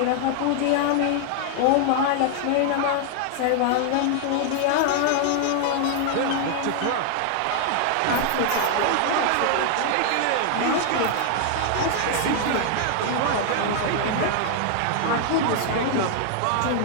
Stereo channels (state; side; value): different; both; correlation 0.00